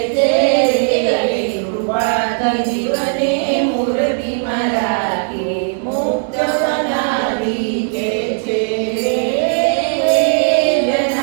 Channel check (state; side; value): silent; left; 68 dB below the other